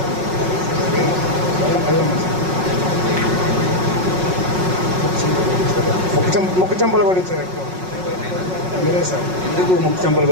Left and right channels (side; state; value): left; late; 5.4 ms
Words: ముక్కు చెంపలు కొట్టించారు ఎక్కువ మీరే సార్. ఎందుకు ముక్కు చెంపలు